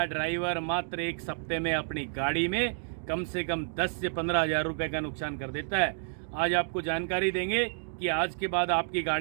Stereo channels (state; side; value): silent; left; digital silence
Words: ड्राइवर मात्र एक हफ्ते में अपनी गाड़ी में कम से कम 10 से 15 हज़ार रुपये का नुकसान कर देता है। आज आपको जानकारी देंगे कि आज के बाद आपकी